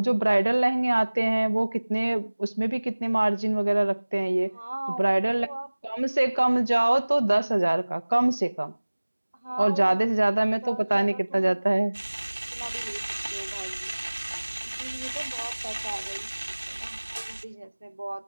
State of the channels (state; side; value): inverted; both; correlation -1.00